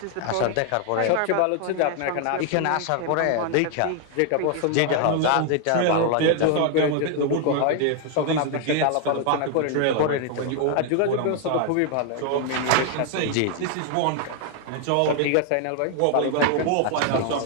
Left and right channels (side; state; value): both; different; correlation 0.00